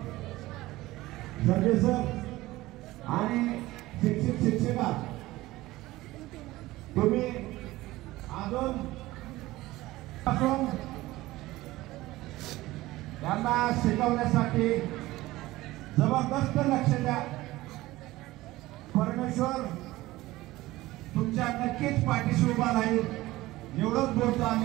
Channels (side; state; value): left; quieter; 18.0 dB